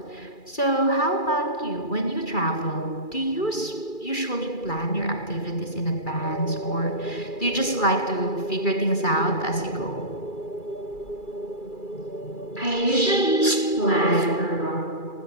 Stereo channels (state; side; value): late; right; 2.3 ms